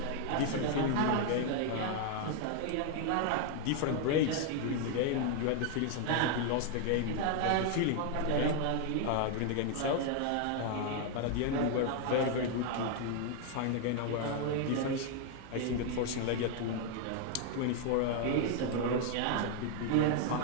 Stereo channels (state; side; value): different; both; correlation 0.00